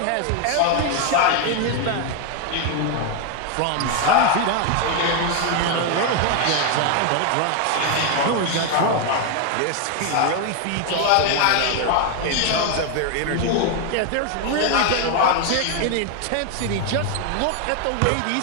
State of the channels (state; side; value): different; both; correlation 0.01